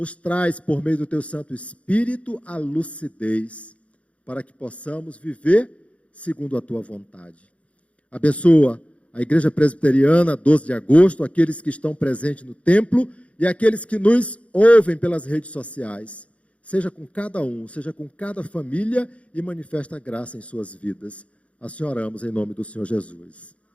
traz, por meio do Teu Santo Espírito, a lucidez, para que possamos viver segundo a Tua vontade. Abençoa a Igreja Presbiteriana, 12 de agosto, aqueles que estão presentes no templo e aqueles que nos ouvem pelas redes sociais. Seja com cada um, seja com cada família e manifesta a graça em suas vidas. Assim oramos em nome do Senhor Jesus.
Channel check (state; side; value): late; right; 0.063 ms